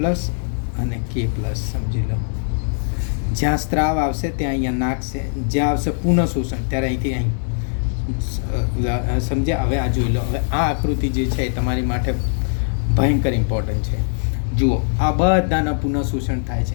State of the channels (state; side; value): silent; right; digital silence